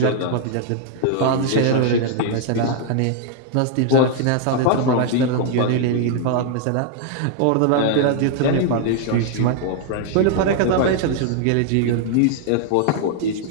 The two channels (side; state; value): both; different; correlation 0.00